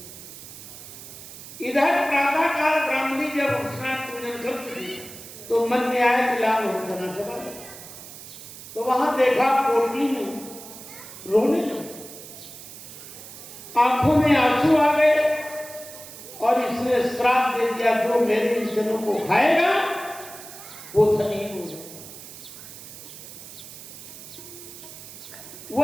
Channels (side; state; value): right; noise; hiss, 14 dB below the sound